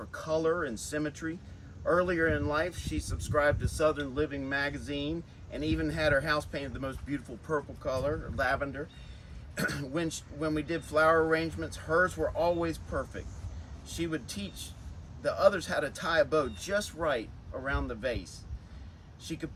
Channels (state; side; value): identical; both; correlation 1.00